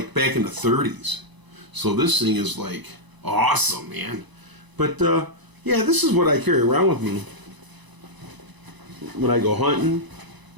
back in the 30s. So this thing is like awesome, man. But, yeah, this is what I carry around with me. when I go hunting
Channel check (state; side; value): late; left; 1.0 ms